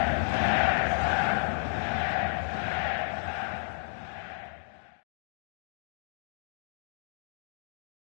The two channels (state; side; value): silent; right; digital silence